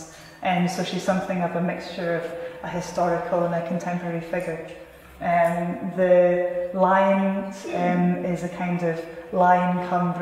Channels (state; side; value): identical; both; correlation 1.00